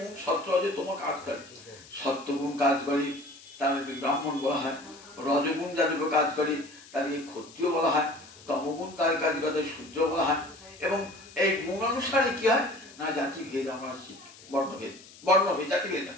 সত্য রজ তম কাজ করে। সত্যগুণ কাজ করে তাদেরকে ব্রাহ্মণ বলা হয়, রজগুণ যাদেরকে কাজ করে তাদেরকে ক্ষত্রিয় বলা হয়, তমগুণ তাদের কাজ করে শূদ্র বলা হয়। এবং এই গুণ অনুসারে কি হয় না জাতি ভেদ আমরা বর্ণভেদ জাতি ভেদ না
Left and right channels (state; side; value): noise; left; hiss, 21 dB below the sound